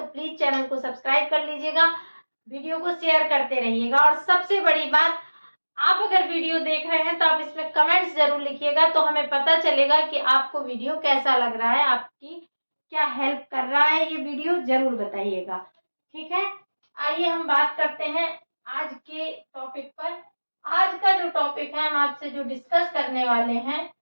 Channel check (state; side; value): inverted; both; correlation -1.00